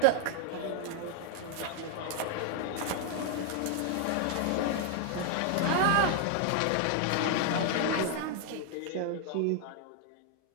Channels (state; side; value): different; both; correlation 0.00